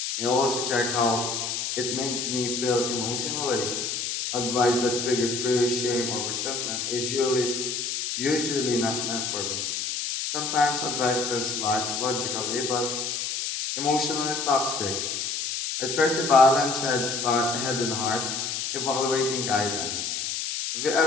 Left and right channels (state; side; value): noise; left; hiss, 2 dB below the sound